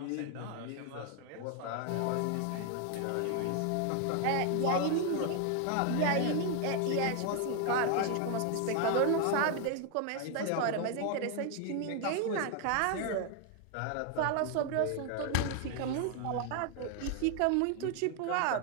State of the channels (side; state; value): both; different; correlation 0.01